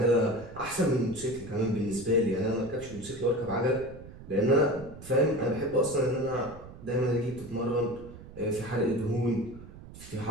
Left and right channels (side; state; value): right; noise; rumble, 16 dB below the sound